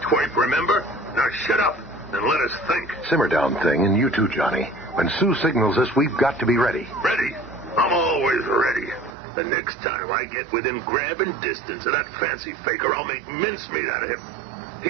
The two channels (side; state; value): left; drops out; at 9.2 s